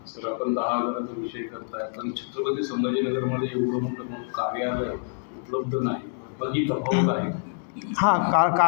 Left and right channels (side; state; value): right; silent; digital silence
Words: सर, आपण 10,000चा विषय करताय पण छत्रपती संभाजीनगरमध्ये एवढं मोठं कार्यालय उपलब्ध नाही, बाकी तफावत आहे. हां,